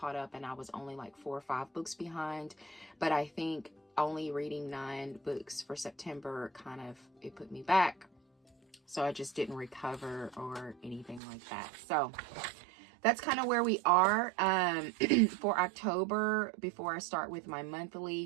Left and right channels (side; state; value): left; drops out; at 11.2 s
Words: up and I was only like 4 or 5 books behind. But I think only reading 9 books for September it put me back. So I just didn't recover or anything like that. So that's kind of where we are. For October, before I start with my